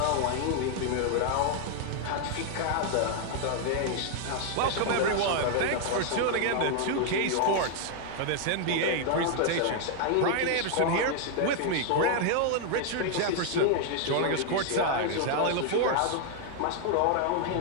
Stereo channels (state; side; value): different; both; correlation 0.00